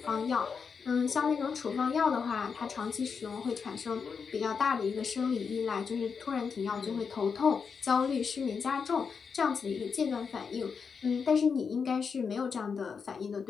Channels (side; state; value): right; quieter; 5.8 dB